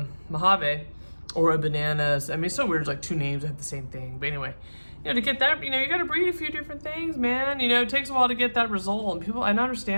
Mojave, or a Bananas. I mean, it's so weird, it's like two names that have the same thing. But anyway, you know, to get that, you know, you got to breed a few different things, man. You know, it takes a while to get that result. And people, I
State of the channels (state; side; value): inverted; both; correlation -1.00